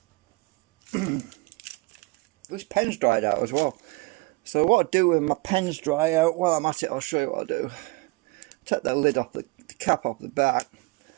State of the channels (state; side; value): quieter; left; 26.7 dB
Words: This pen's dried out as well. So what I do when my pens dry out, while I'm at it, I'll show you what I do. Take the lid off, the cap off the back.